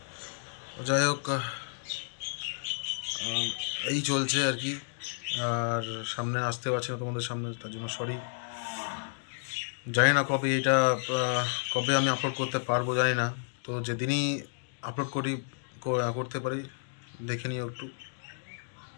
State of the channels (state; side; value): silent; right; digital silence